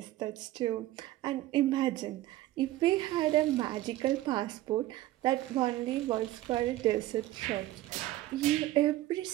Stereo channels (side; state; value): left; quieter; 15.6 dB